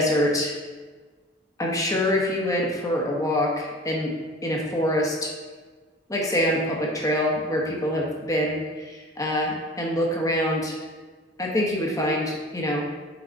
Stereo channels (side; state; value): both; normal; correlation 0.40